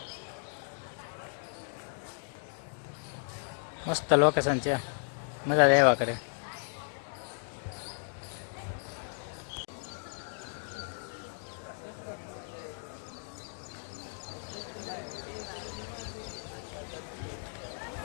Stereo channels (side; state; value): right; silent; 55 dB below the other